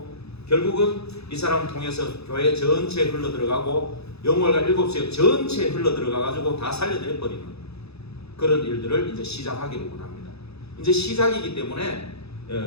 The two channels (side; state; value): right; late; 0.79 ms